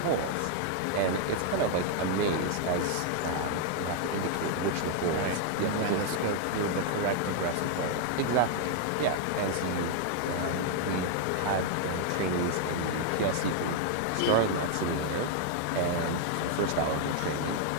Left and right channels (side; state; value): both; different; correlation 0.00